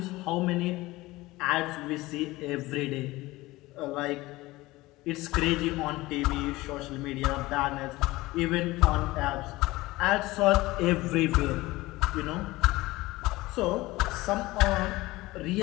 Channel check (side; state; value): right; quieter; 19.6 dB